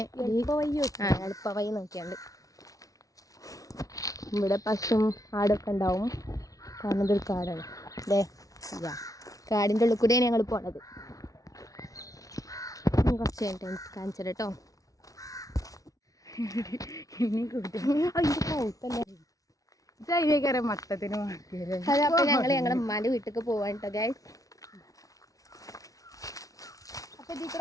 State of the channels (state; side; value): late; right; 0.17 ms